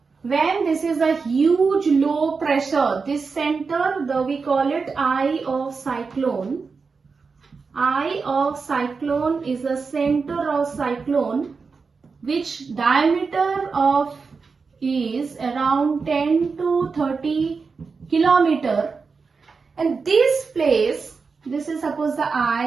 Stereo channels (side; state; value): left; quieter; 4.9 dB